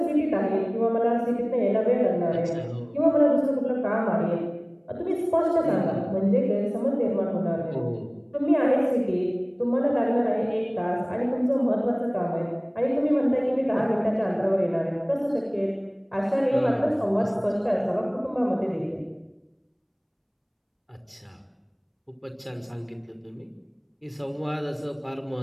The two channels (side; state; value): both; identical; correlation 1.00